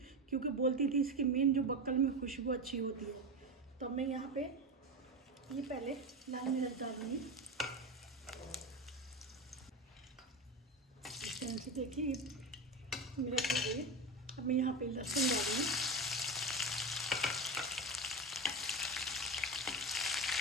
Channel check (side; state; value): both; normal; correlation 0.20